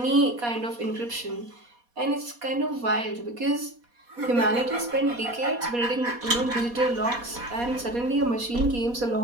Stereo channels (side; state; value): left; late; 4.2 ms